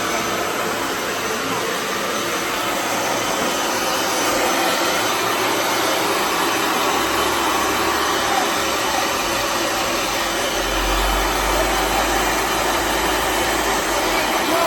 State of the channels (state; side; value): identical; both; correlation 1.00